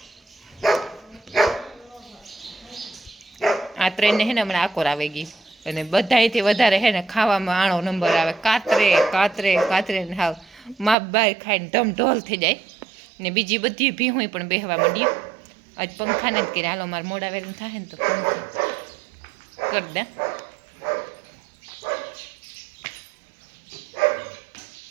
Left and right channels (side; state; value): left; drops out; at 11.0 s